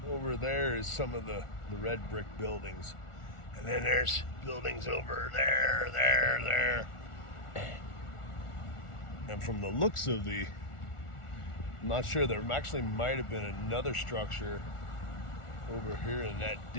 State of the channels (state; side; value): late; right; 1.4 ms